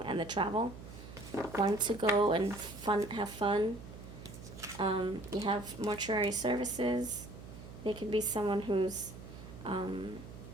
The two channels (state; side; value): noise; right; hum, 14 dB below the sound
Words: and the travel. Want to go and have fun. You have mortuary services. They could be someone who's,